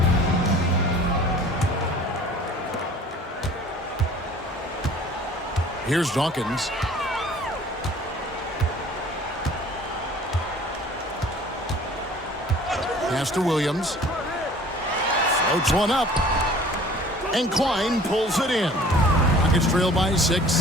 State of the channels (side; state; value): both; normal; correlation 0.49